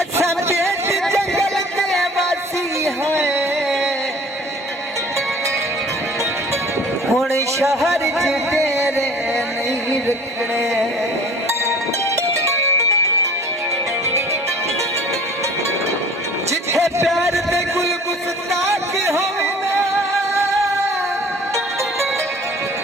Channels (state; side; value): normal; both; correlation 0.47